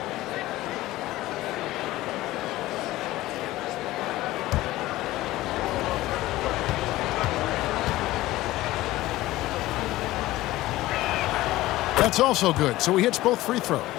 That's also good. So he hits both free throws.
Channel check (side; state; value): right; quieter; 17.1 dB